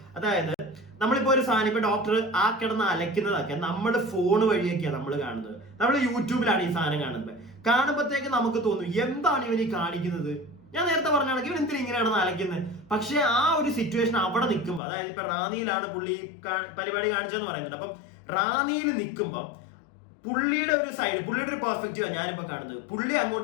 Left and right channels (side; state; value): right; drops out; at 14.8 s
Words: അതായത് നമ്മളിപ്പോ ഒരു സാധനം ഇപ്പൊ ഡോക്ടർ ആ കിടന്ന് അലക്കുന്നതൊക്കെ നമ്മൾ ഫോൺ വഴിയൊക്കെയാണ് നമ്മൾ കാണുന്നത്. നമ്മൾ യൂട്യൂബിലാണ് ഈ സാധനം കാണുമ്പോഴത്തേക്ക് നമുക്ക് തോന്നും എന്താണ് ഇവൻ ഈ കാണിക്കുന്നത്. ഞാൻ നേരത്തെ പറഞ്ഞാണെങ്കിൽ ഇവൻ എന്തിനാ ഇങ്ങനെയാണ് അലക്കുന്നത്. പക്ഷെ ആ ഒരു സിറ്റുവേഷൻ അവിടെ നിൽക്കുമ്പോൾ, അതായത് ഇപ്പൊ റാന്നിയിലാണ് പുള്ളി പരിപാടി കാണിച്ചതെന്ന് പറയുന്നുണ്ട്. അപ്പം റാന്നിയിൽ നിൽക്കുമ്പം പുള്ളിയുടെ ഒരു സൈഡ്, പുള്ളിയുടെ ഒരു പെർസ്പെക്റ്റീവാണ് ഞാനിപ്പോ കാണുന്നത്. പുള്ളി